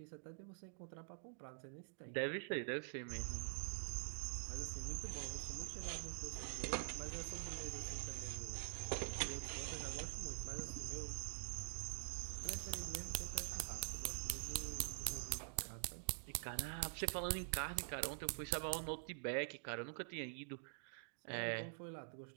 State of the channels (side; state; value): left; silent; digital silence